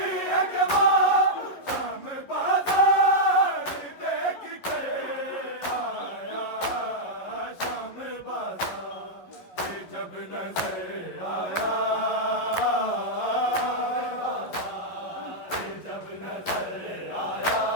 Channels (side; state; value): right; late; 11 ms